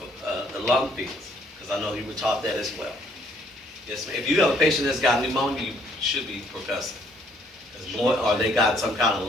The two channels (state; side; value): normal; both; correlation 0.65